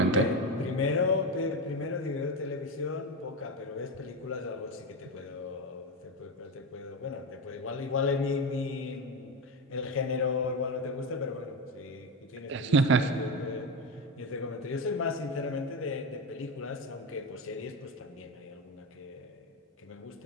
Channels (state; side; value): normal; both; correlation 0.17